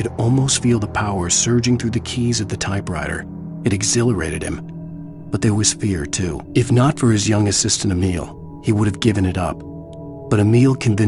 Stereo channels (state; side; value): identical; both; correlation 1.00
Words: almost feel the power surging through the keys of the typewriter. It exhilarated him. But there was fear, too. If not for his young assistant Emil, he would have given it up. But Emil